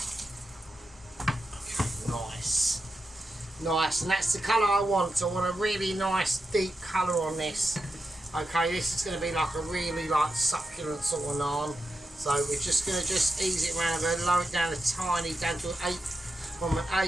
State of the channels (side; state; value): both; normal; correlation 0.88